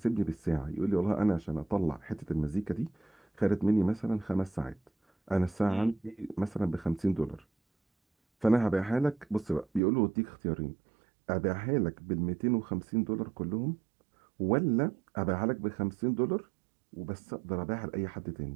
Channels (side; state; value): left; drops out; at 9.8 s